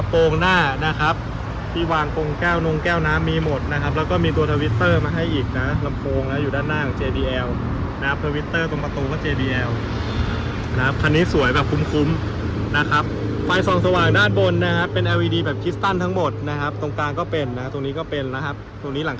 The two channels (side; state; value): both; identical; correlation 1.00